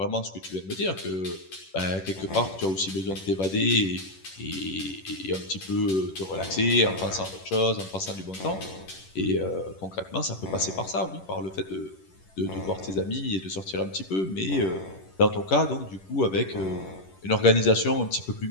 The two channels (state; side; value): late; right; 11 ms